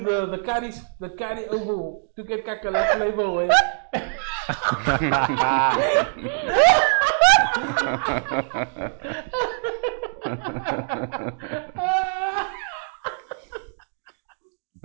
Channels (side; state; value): left; silent; digital silence